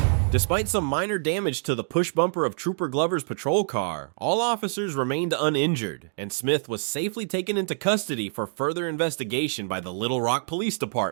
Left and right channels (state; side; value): silent; left; digital silence